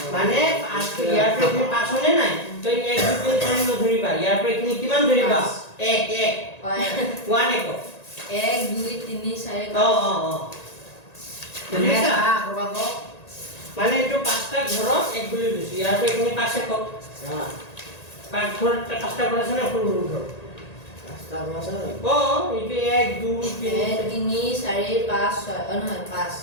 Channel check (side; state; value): right; late; 1.9 ms